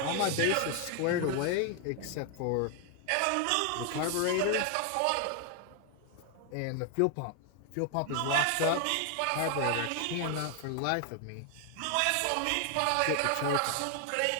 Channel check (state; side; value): different; both; correlation 0.00